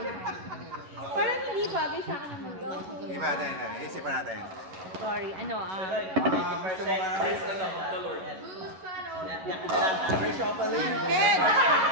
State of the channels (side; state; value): left; late; 11 ms